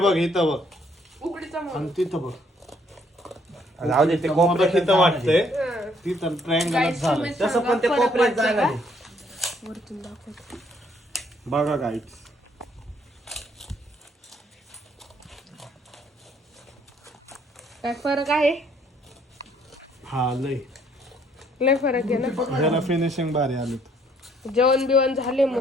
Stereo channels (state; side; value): normal; both; correlation 0.66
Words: इथं बघ उकडीचा आणि म्हणून. तिथं बघ. जाऊ दे ते कोपऱ्यात तिथं वाटतंय हं. तिथं ट्रायंगल Guys, झालं. तुम्ही तसं सांगा पण ते फरक कोपऱ्यात वाटतो जागा का? नाही. वरतून दाखव. बघा गाईच. काय फरक आहे? हा लय लय फरक आहे ना. जरा फिनिशिंग भारी आली. जेवण बिवण झाले